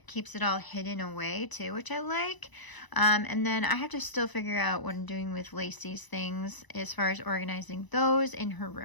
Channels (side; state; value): right; late; 1.0 ms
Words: Keeps it all hidden away too, which I like. And then I have to still figure out what I'm doing with Lacey's things as far as organizing those in her